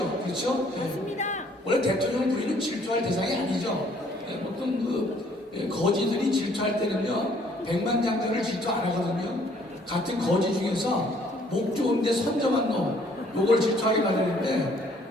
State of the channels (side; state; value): both; normal; correlation 0.62